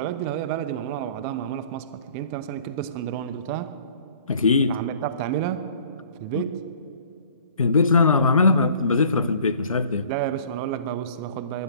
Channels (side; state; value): both; inverted; correlation -0.52